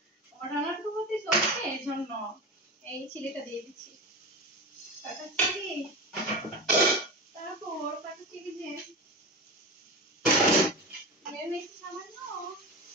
আমার রান্নার প্রগতি চলছে, এই জন্য এই চিলিটা দিয়ে দিচ্ছি। কাটা চিলি, তারপর কাটা চিলি যে মেরে নিচ্ছি সামান্য।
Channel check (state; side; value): normal; both; correlation 0.26